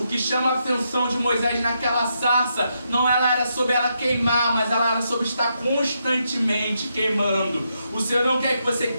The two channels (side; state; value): both; inverted; correlation -0.81